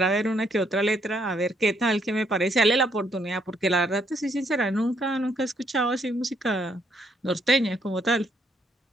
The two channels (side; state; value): both; normal; correlation 0.71